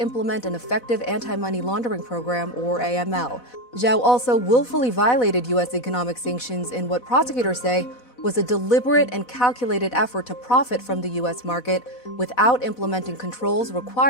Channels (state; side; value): late; right; 4.1 ms